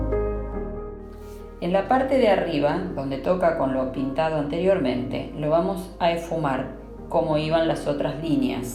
En la parte de arriba, donde toca con lo pintado anteriormente, lo vamos a esfumar como iban las otras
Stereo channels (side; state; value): both; identical; correlation 1.00